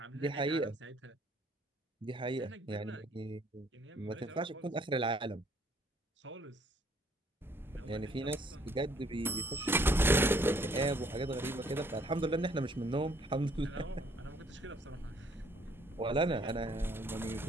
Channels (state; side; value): normal; both; correlation 0.63